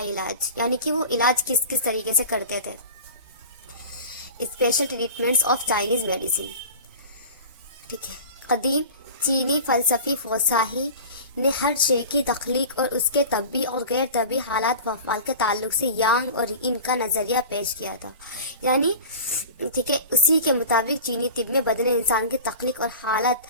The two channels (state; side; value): inverted; both; correlation -0.36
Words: علاج، یعنی کہ وہ علاج کس کس طریقے سے کرتے تھے. Special treatments of Chinese medicine. ٹھیک ہے. قدیم چینی فلسفی فوساہی نے ہر شے کی تخلیق اور اس کے طبی اور غیر طبی حالات و افعال کے تعلق سے یانگ اور ان کا نظریہ پیش کیا تھا. یعنی ٹھیک ہے، اسی کے مطابق چینی طب میں بدن انسان کی تخلیق اور حالت